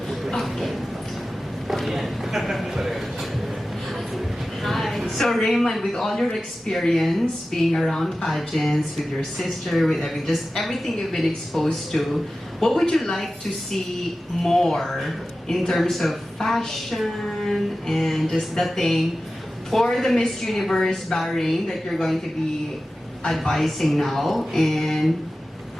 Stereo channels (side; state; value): both; normal; correlation 0.95